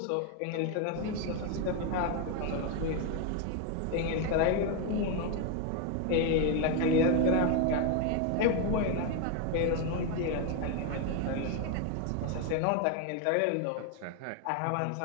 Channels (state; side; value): different; both; correlation 0.01